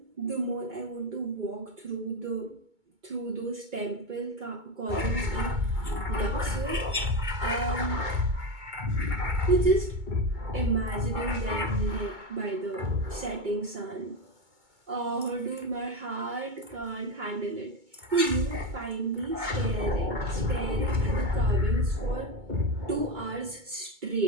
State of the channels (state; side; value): late; left; 2.2 ms